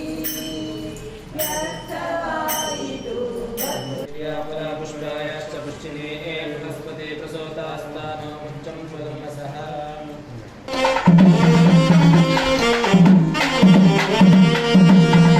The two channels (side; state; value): both; identical; correlation 1.00